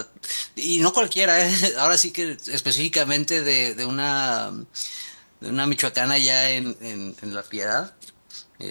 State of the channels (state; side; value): inverted; both; correlation -1.00